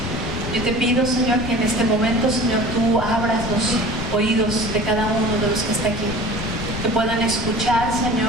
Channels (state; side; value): noise; left; rumble, 8 dB below the sound